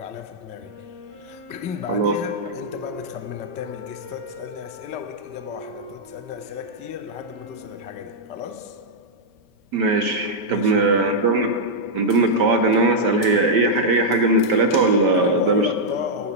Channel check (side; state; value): left; late; 5.2 ms